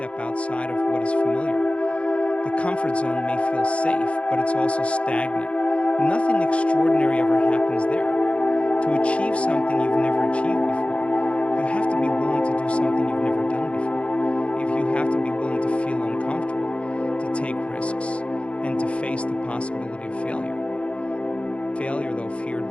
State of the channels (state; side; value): late; right; 0.061 ms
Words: outside of what is familiar. The comfort zone may feel safe, but it's also stagnant. Nothing extraordinary ever happens there. To achieve something you've never achieved before, you have to be willing to do something you've never done before. If you have to be willing to feel uncomfortable, to take risks, and to face the possibility of failure. Failure, though feared